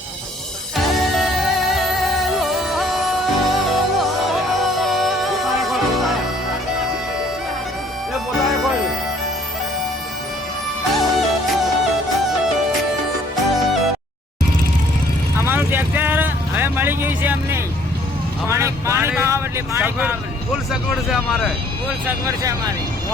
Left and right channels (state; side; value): normal; both; correlation 0.60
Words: અમારું ટ્રેક્ટર હવે મળી ગયું છે અમને। પાણી પાવા એટલે પાણી પાવા ફૂલ સગવડ છે અમારે, ફૂલ સગવડ છે અમારી।